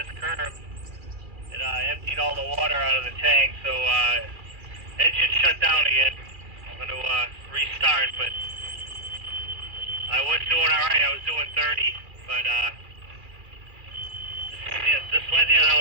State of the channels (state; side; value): late; left; 2.4 ms